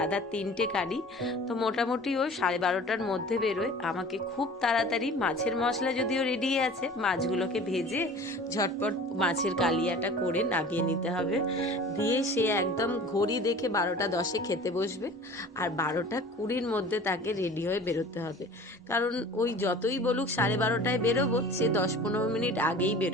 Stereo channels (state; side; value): normal; both; correlation 0.43